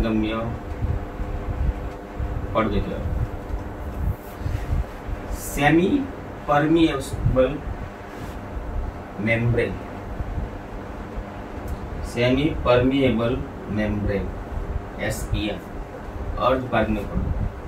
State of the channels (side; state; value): both; identical; correlation 1.00